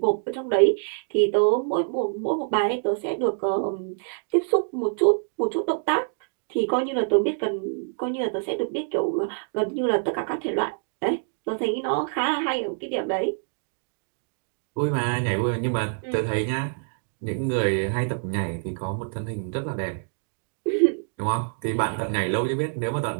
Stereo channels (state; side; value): silent; left; digital silence